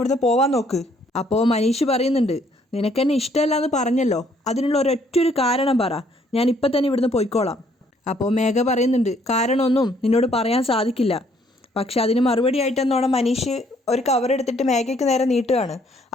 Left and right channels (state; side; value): normal; both; correlation 0.65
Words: പോവാൻ നോക്ക്. അപ്പോൾ മനീഷ് പറയുന്നുണ്ട്, നിനക്കെന്നെ ഇഷ്ടമല്ല എന്ന് പറഞ്ഞല്ലോ, അതിനുള്ള ഒരൊറ്റൊരു കാരണം പറ, ഞാൻ ഇപ്പം തന്നെ ഇവിടുന്ന് പോയിക്കോളാം. അപ്പോൾ മേഘ പറയുന്നുണ്ട്, കാരണമൊന്നും നിന്നോട് പറയാൻ സാധിക്കില്ല. പക്ഷെ അതിന് മറുപടി ആയിട്ടെന്നോണം മനീഷ് ഒരു കവർ എടുത്തിട്ട് മേഘയ്ക്ക് നേരെ നീട്ടുകയാണ്.